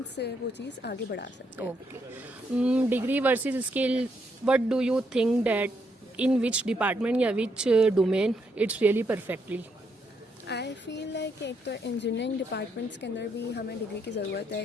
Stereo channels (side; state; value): both; normal; correlation 0.77